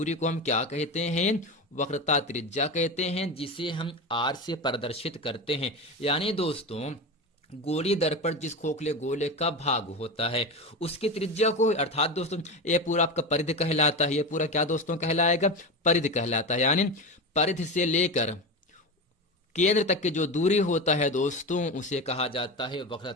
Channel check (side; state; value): both; normal; correlation 0.22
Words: को हम क्या कहते हैं, वक्रता त्रिज्या कहते हैं, जिसे हम आर से प्रदर्शित करते हैं। यानी दोस्तों गोली दर्पण जिस खोखले गोले का भाग होता है उसकी त्रिज्या को, अर्थात दोस्तों ये पूरा आपका परिधि कहलाता है, ये पूरा क्या दोस्तों कहलाएगा, परिधि कहलाता है। यानी परिधि से लेकर केंद्र तक की जो दूरी होता है दोस्तों उसे कहा जाता है वक्रता